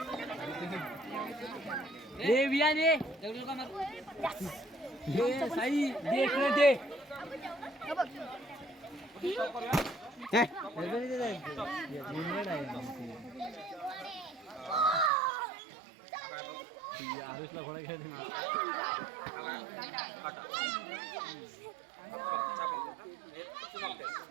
आरुषला घोडा घ्या.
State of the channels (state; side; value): drops out; left; at 15.1 s